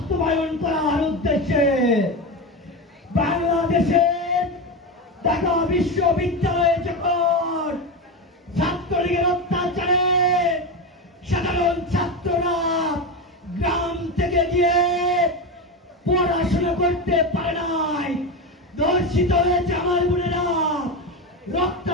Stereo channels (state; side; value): normal; both; correlation 0.17